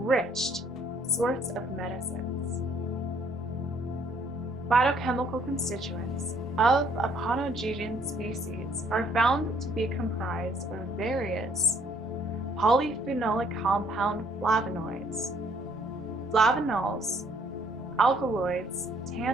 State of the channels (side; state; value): both; normal; correlation 0.64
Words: source of medicines. Phytochemical constituents of Aponogeton species are found to be comprised of various polyphenolic compound flavonoids, flavonols, alkaloids,